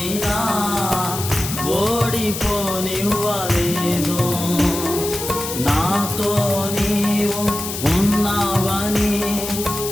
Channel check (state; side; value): noise; left; hiss, 6 dB below the sound